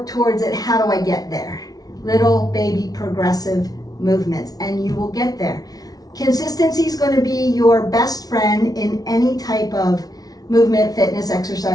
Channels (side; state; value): right; late; 0.18 ms